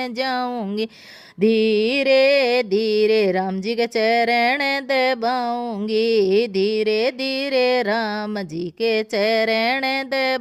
जाऊंगी। धीरे धीरे राम जी के चरण दबाऊंगी, धीरे धीरे राम जी के चरण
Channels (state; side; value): identical; both; correlation 1.00